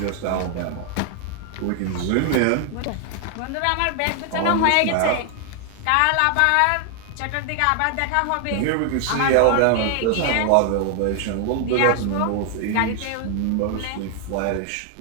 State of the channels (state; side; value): different; both; correlation 0.00